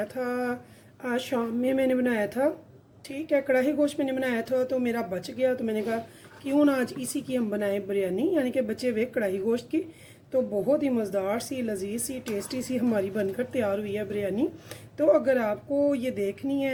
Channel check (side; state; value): both; identical; correlation 1.00